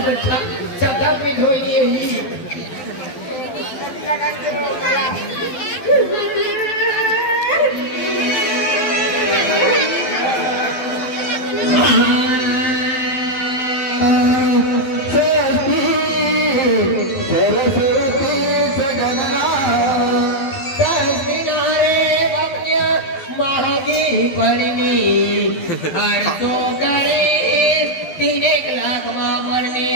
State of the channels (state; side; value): late; right; 12 ms